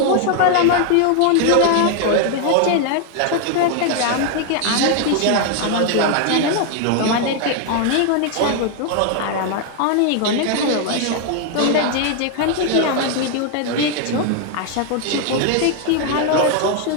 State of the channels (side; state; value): both; different; correlation 0.00